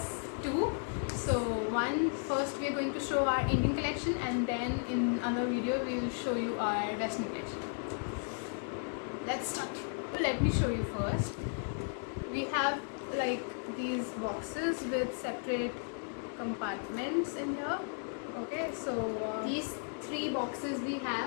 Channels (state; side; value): silent; right; 55 dB below the other